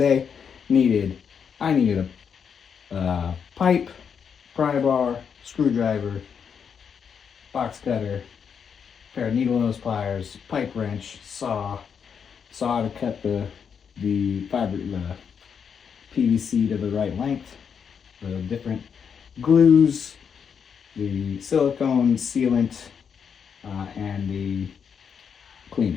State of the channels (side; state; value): right; quieter; 7.0 dB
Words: day, I needed a pipe, pry bar, screwdriver, box cutter, pair of needle nose pliers, pipe wrench, saw to cut the PVC to the right length, the different glues, the silicone sealant, and the